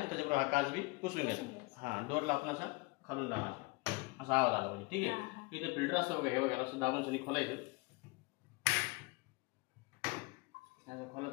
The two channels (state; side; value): quieter; right; 25.6 dB